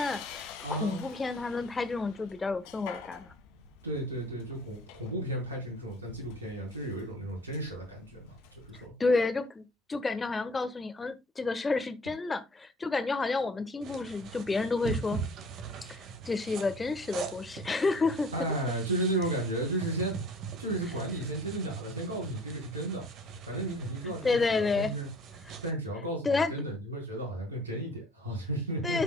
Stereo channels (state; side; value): normal; both; correlation 0.51